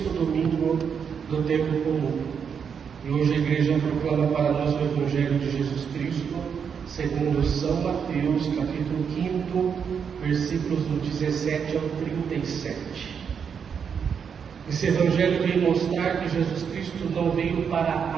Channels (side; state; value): left; quieter; 6.9 dB